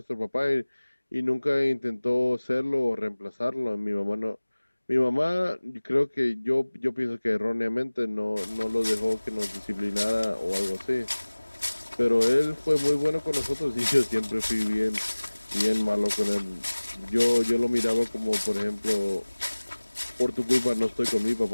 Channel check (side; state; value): both; inverted; correlation -1.00